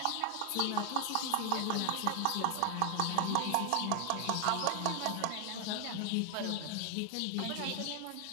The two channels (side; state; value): both; different; correlation 0.00